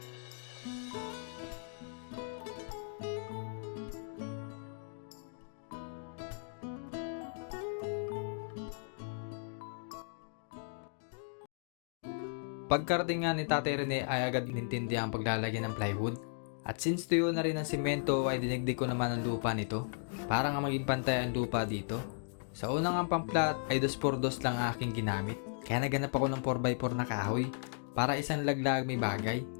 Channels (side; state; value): right; silent; digital silence